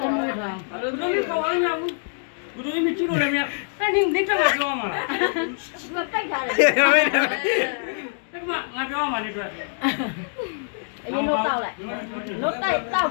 တော်မူတာ အဲ့လိုမျိုးကောင်းအောင်ဘူးဘယ်လိုမျိုးကြည့်လို့လဲမရအဲ့ဒီနေတော့ပြောမှာလား သူကပိတ်ထားတယ် အဲ့မှာငါပြောမှာနေတွေ့ အရင်တော့တောက်လိုက်လို့တိုက်တောက်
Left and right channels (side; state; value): right; silent; digital silence